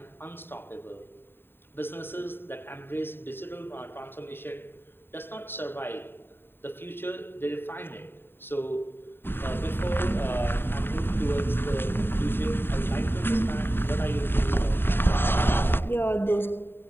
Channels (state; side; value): late; right; 0.10 ms